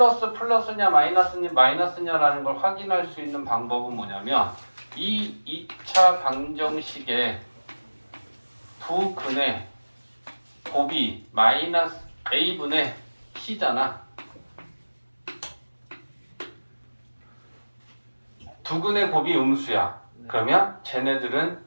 마이너스냐라는 걸 확인할 수 있는 방법은 뭐냐면 이 2차 방정식의 두 근의 곱이 마이너스 a분의 c잖아. 두 근의 곱이 음수야. 그러면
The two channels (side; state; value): both; inverted; correlation -1.00